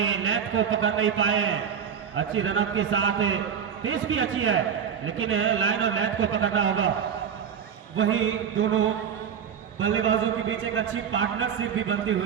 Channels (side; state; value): left; quieter; 7.8 dB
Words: लेंथ को पकड़ नहीं पाए। अच्छी रनअप के साथ पेस भी अच्छी है, लेकिन लाइन और लेंथ को पकड़ना होगा। वही दोनों बल्लेबाजों के बीच एक अच्छी पार्टनरशिप भी बनती